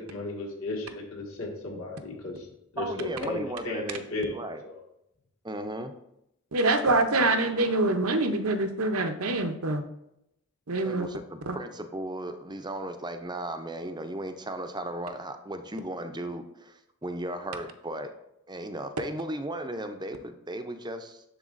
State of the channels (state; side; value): normal; both; correlation 0.05